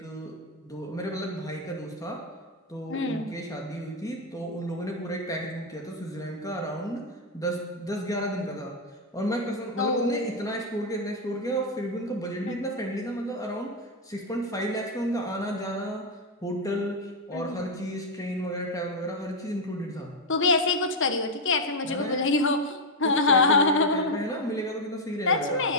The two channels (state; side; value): normal; both; correlation 0.04